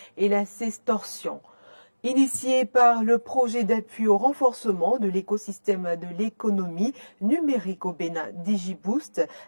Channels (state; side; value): inverted; both; correlation -1.00